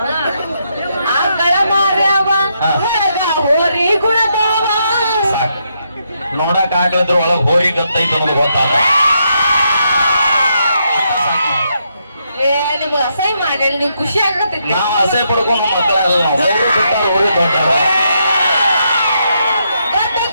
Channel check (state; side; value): inverted; both; correlation -0.79